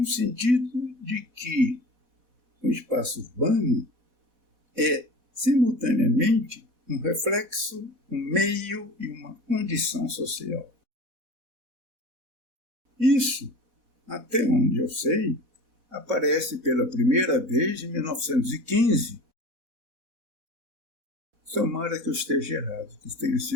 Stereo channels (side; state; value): left; late; 4.1 ms